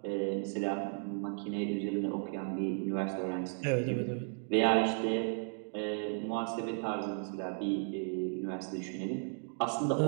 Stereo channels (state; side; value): silent; left; 55 dB below the other